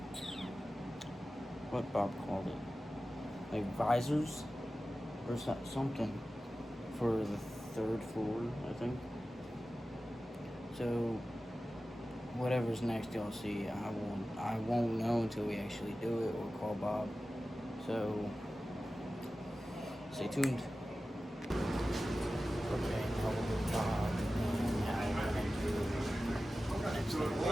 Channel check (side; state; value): both; normal; correlation 0.95